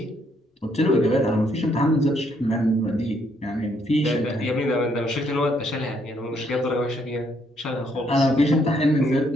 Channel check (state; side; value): normal; both; correlation 0.71